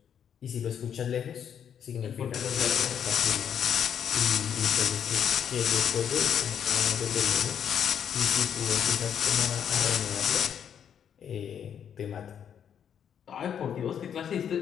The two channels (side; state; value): right; quieter; 8.5 dB